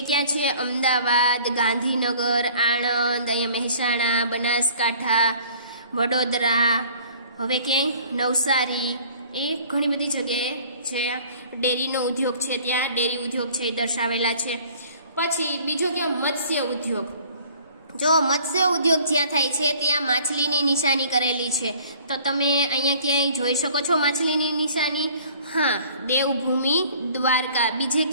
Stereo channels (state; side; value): inverted; both; correlation -0.52